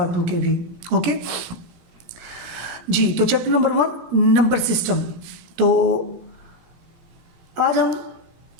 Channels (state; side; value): late; left; 17 ms